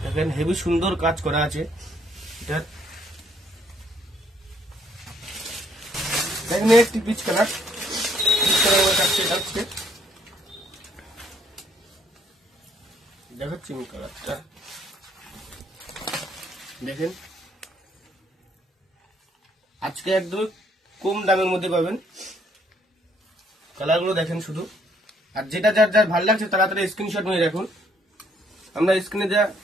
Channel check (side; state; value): both; normal; correlation 0.67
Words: দেখেন হেভি সুন্দর কাজ করা আছে এটা। দেখেন একটি পিচ কালার, দেখাচ্ছি কালারটা। দেখেন আজকে একদম কম দামের মধ্যে পাবেন কালারগুলো। দেখেন শুধু, আর যেটা যার যার ভালো লাগছে তাড়াতাড়ি স্ক্রিনশট নিয়ে রাখুন। আমরা স্ক্রিনে যা